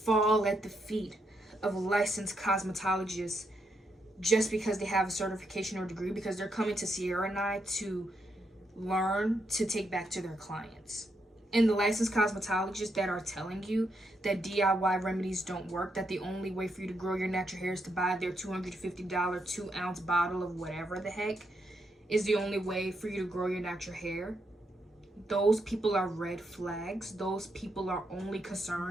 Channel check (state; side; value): normal; both; correlation 0.80